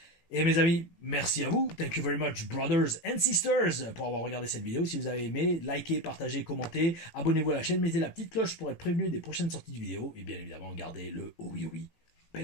Et mes amis, merci à vous. Thank you very much, brothers and sisters, pour avoir regardé cette vidéo. Si vous avez aimé, likez, partagez, commentez, abonnez-vous à la chaîne, mettez la petite cloche pour être prévenu des prochaines sorties de vidéos. Et bien évidemment, gardez le oh oui,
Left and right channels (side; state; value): right; late; 18 ms